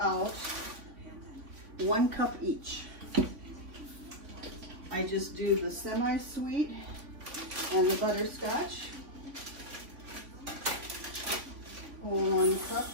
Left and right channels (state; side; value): late; left; 3.5 ms